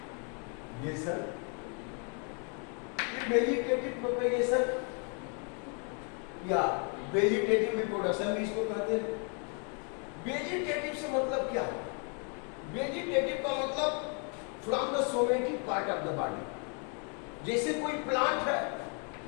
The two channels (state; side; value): quieter; right; 38.8 dB